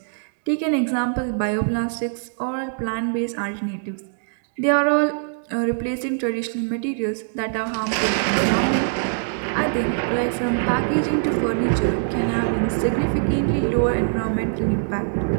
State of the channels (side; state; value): left; silent; digital silence